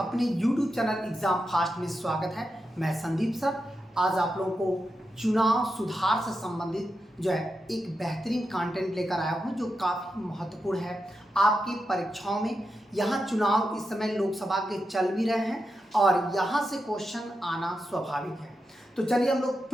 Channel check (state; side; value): normal; both; correlation 0.88